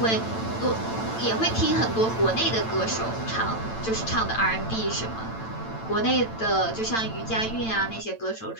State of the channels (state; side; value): late; right; 8.9 ms